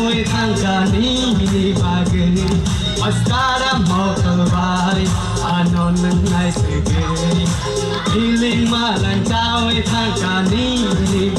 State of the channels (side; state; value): both; identical; correlation 1.00